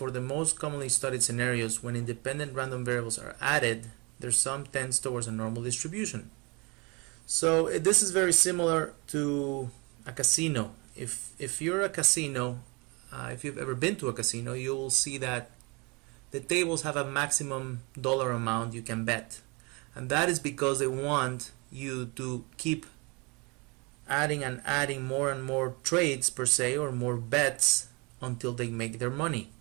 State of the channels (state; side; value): quieter; left; 28.8 dB